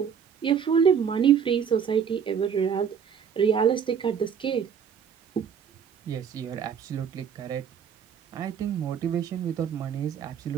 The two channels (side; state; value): left; quieter; 7.5 dB